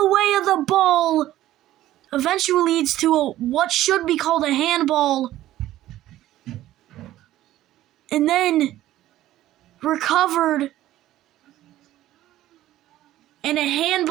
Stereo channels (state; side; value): quieter; left; 14.2 dB